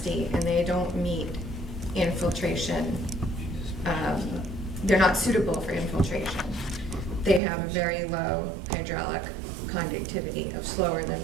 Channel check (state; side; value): drops out; left; at 7.4 s